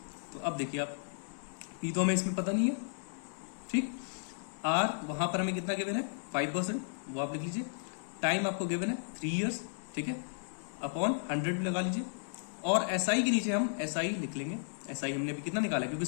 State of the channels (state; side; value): silent; right; digital silence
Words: तो अब देखिए आप P तो हमें इसमें पता नहीं है, ठीक। R वहां पर हमें कितना गिवन है, 5%, वो आप लिख लीजिए। टाइम आपको गिवन है 3 years, ठीक है, अपॉन 100 भी लगा लीजिए। और SI के नीचे हम SI लिख लेंगे। SI हमने भी कितना निकाला है, क्योंकि